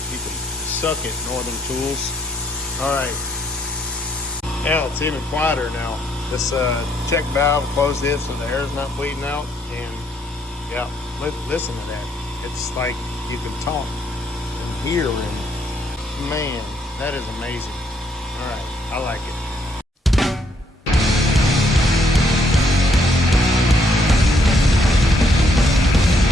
You can suck it, Northern Tools. All right. Now it's even quieter now. This check valve closed in so the air's not bleeding out. And yeah, listen to that. It's like you can talk and hear, and man, that is amazing. All right, I like it.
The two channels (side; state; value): both; normal; correlation 0.71